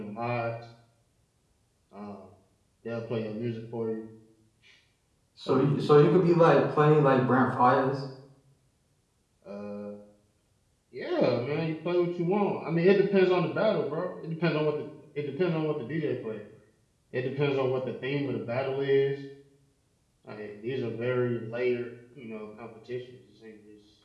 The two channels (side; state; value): both; identical; correlation 1.00